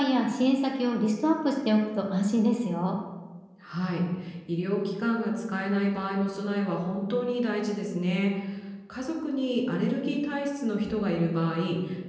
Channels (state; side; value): identical; both; correlation 1.00